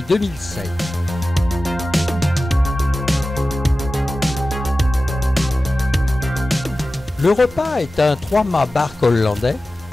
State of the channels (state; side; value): normal; both; correlation 0.95